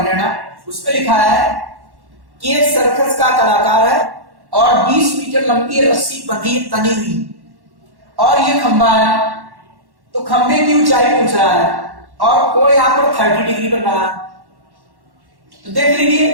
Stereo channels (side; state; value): left; late; 1.1 ms